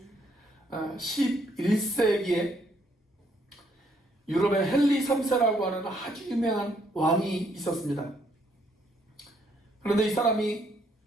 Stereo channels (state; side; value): normal; both; correlation 0.70